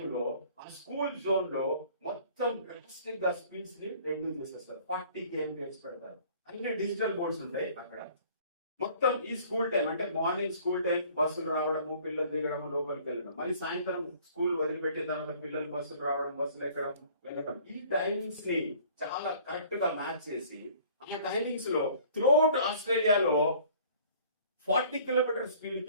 ఆ స్కూల్ జోన్ లో మొత్తం డ్రాస్టిక్ గా స్పీడ్స్ ని రెడ్యూస్ చేసేస్తారు. 40 km పెడతారు. అన్ని డిజిటల్ బోర్డ్స్ ఉంటాయి అక్కడ. మొత్తం ఈ స్కూల్ టైం అంటే మార్నింగ్ స్కూల్ టైం బస్సులు రావడము, పిల్లలు దిగడము, లోపలికి వెళ్ళడం, మళ్ళీ సాయంత్రం స్కూల్ వదిలిపెట్టిన తర్వాత పిల్లలు బస్సులు రావడం, బస్సులు ఎక్కడం, వెళ్ళడం, ఈ టైమింగ్స్ ని చాలా కరెక్ట్ గా మ్యాచ్ చేసి ఆ టైమింగ్స్ లో త్రూఅవుట్ ఆస్ట్రేలియాలో 40 km స్పీడ్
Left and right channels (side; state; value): both; inverted; correlation -0.53